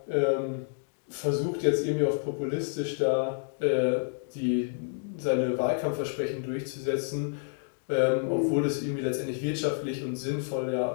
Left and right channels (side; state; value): right; silent; digital silence